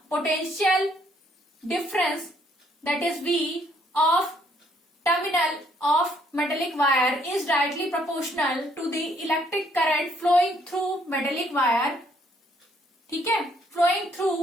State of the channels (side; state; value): both; normal; correlation 0.67